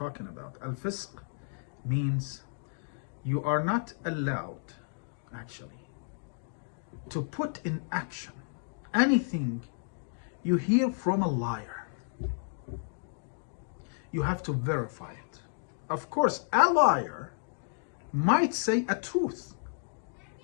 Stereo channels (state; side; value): silent; right; digital silence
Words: about, al-fisq means you are not allowed actually to put in action anything you hear from a liar. You have to verify it. Of course, a liar might say a truth.